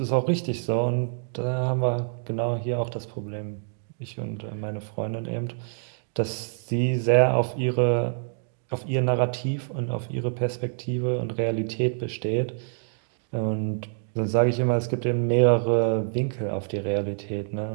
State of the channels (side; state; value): left; silent; digital silence